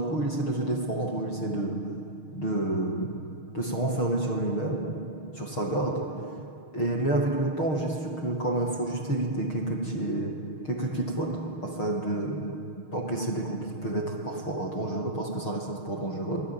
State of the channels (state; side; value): late; right; 6.5 ms